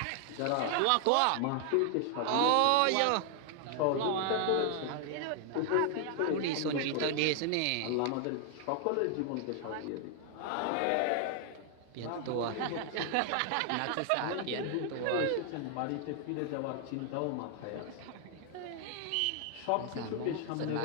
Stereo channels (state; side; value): different; both; correlation 0.00